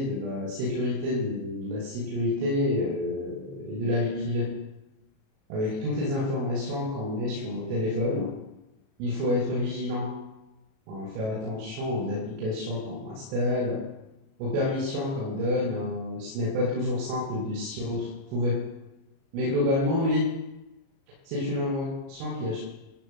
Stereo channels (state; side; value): late; left; 37 ms